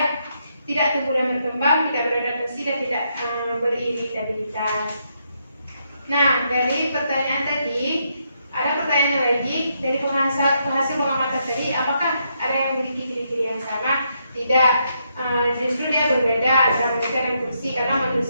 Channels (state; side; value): inverted; both; correlation -0.78